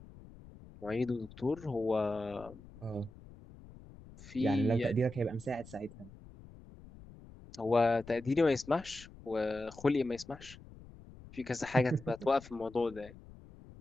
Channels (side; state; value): left; noise; rumble, 19 dB below the sound